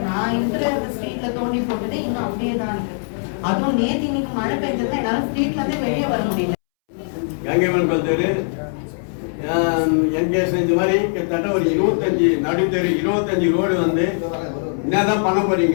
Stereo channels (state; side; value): silent; right; 65 dB below the other